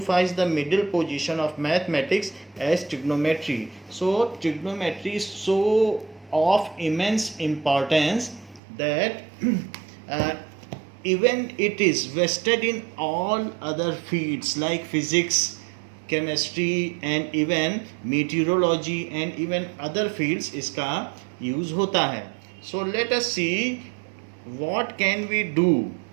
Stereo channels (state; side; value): drops out; left; at 8.6 s